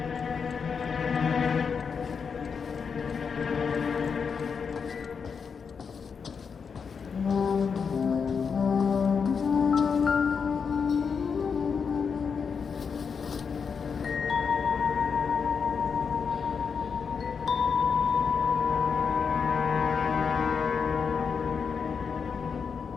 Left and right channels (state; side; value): quieter; right; 6.0 dB